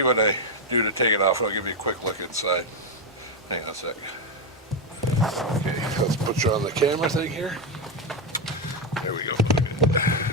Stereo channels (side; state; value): both; normal; correlation 0.06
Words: what I do to take it off. I'll give you a quick look inside. Hang on a sec. Okay, let's put you on the camera thing here. There we go.